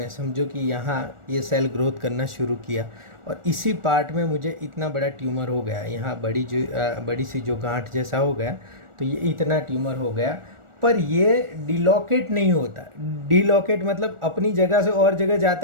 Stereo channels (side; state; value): left; late; 1.4 ms